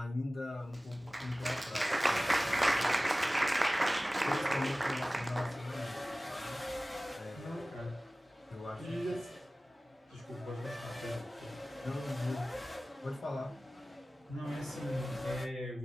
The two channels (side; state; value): both; normal; correlation 0.97